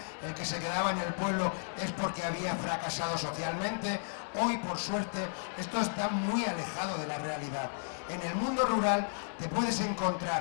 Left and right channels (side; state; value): right; silent; digital silence